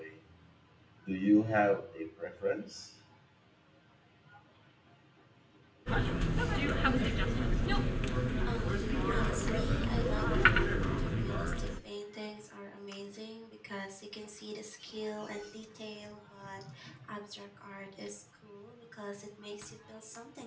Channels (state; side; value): identical; both; correlation 1.00